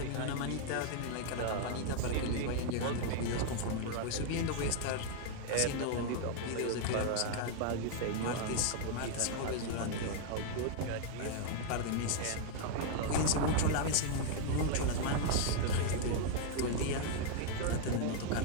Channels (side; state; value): both; different; correlation 0.00